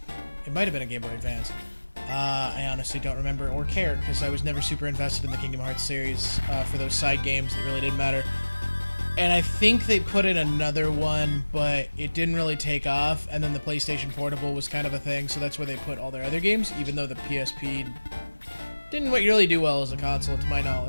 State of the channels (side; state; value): both; inverted; correlation -1.00